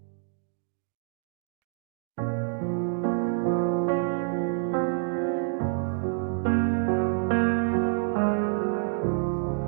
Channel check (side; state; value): left; silent; digital silence